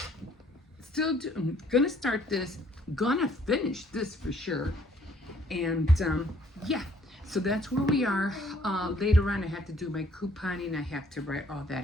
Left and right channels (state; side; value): normal; both; correlation 0.62